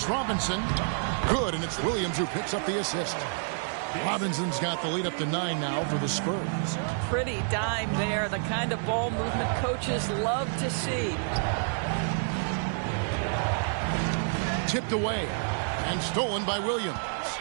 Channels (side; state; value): left; silent; digital silence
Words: Robinson. Good, and it's Williams who picks up the assist. Robinson's got the lead up to 9 now for the Spurs. Pretty dime there, the kind of ball movement coaches love to see. Tipped away and stolen by Williams.